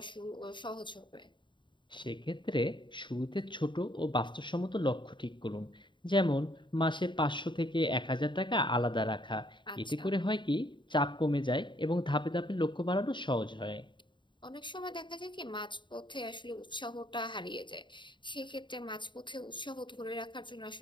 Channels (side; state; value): right; late; 0.23 ms